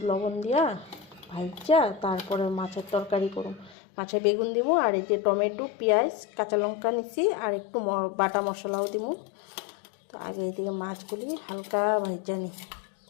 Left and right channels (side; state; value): right; drops out; at 3.8 s